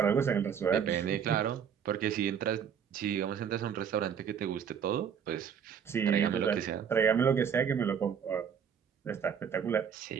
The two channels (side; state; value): left; quieter; 7.7 dB